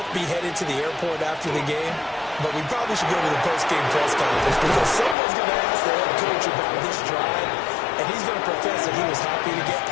be headed to the airport after the game, but we probably should go to the post-game press conference because someone's going to ask the head coach about this drive, and he's going to profess that he was happy to get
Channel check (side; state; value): right; drops out; at 5.2 s